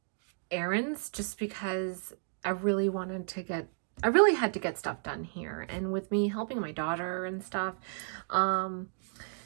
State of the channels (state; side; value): silent; left; digital silence